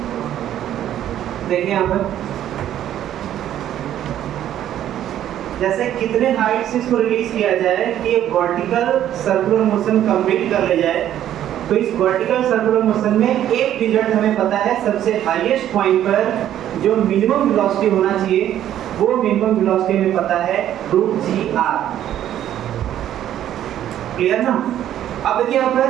देखिए यहाँ पर जैसे कितने हाइट से इसको रिलीज किया जाए कि वर्टिकल सर्कुलर मोशन कंप्लीट कर ले जाए, तो इस वर्टिकल सर्कुलर मोशन में एक रिजल्ट हमें पता है, सबसे हाईएस्ट पॉइंट पर जो मिनिमम वेलोसिटी होना चाहिए वो मिनिमम वेलोसिटी हमें पता है √gr। क्लियर ना? अब देखिए यहाँ पर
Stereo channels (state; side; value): quieter; left; 11.5 dB